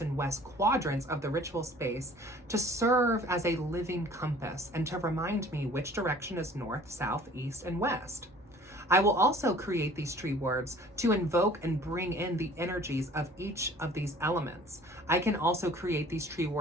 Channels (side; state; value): both; normal; correlation 0.50